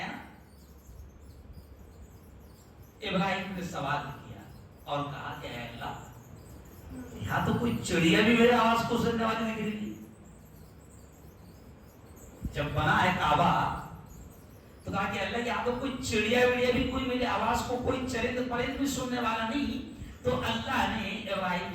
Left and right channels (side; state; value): both; identical; correlation 1.00